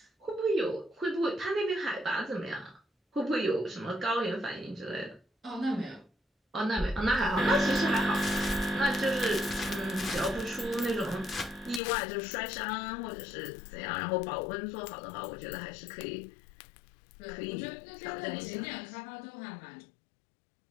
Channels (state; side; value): drops out; right; at 11.8 s